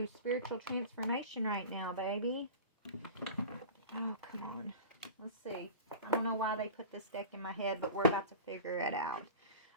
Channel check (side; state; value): both; inverted; correlation -0.34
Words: spiritual transformation right now, baby. Oh, come on. Let's see. I don't know why they put this deck in my head, but we're about to figure it out.